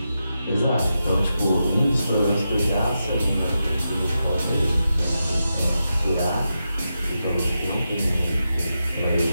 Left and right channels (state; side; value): inverted; both; correlation -0.88